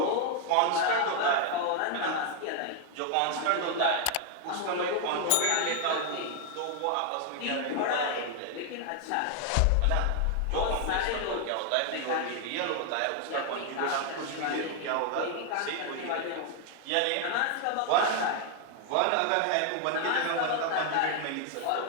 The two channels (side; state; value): both; different; correlation 0.00